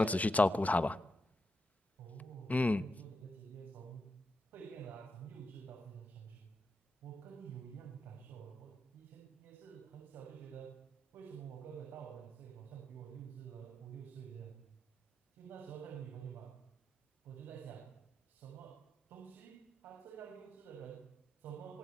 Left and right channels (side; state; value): both; normal; correlation 0.85